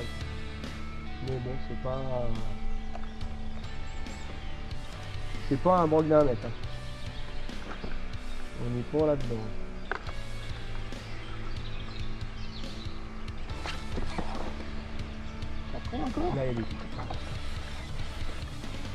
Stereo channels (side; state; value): both; identical; correlation 1.00